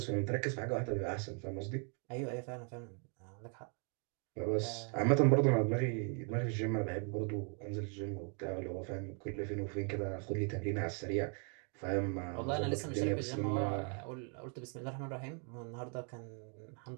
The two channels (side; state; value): left; quieter; 39.9 dB